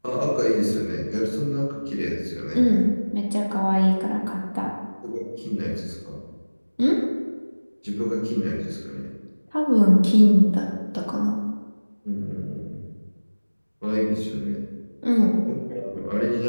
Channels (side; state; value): both; inverted; correlation -1.00